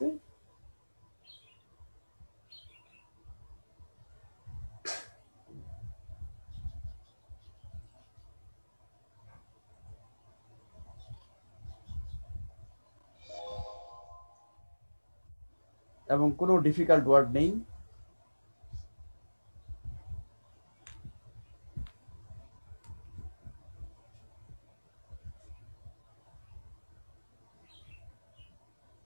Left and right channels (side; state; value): both; inverted; correlation -1.00